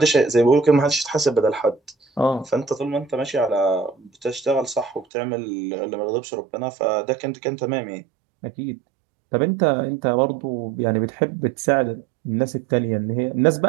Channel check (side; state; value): left; drops out; at 5.1 s